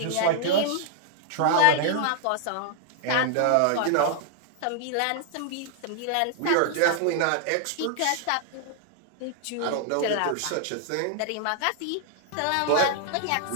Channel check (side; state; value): both; different; correlation -0.01